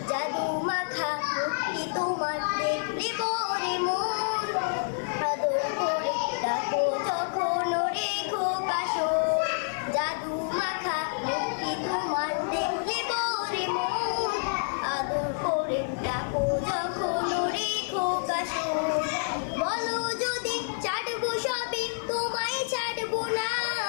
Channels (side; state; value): right; silent; 59 dB below the other